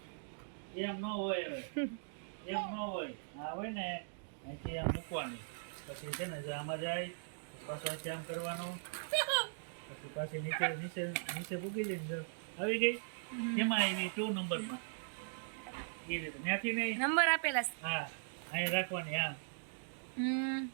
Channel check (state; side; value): silent; left; digital silence